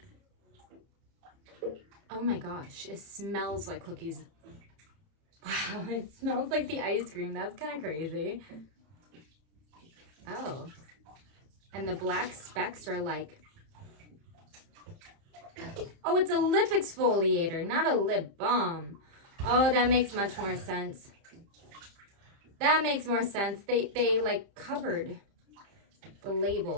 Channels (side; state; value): left; late; 30 ms